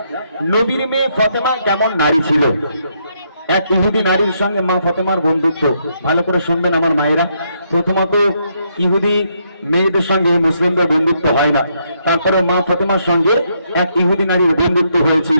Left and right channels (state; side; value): inverted; both; correlation -0.75